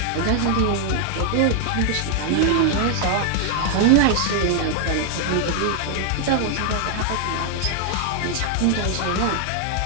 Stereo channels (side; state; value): both; different; correlation 0.00